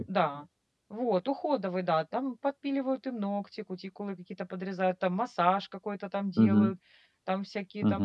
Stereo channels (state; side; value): identical; both; correlation 1.00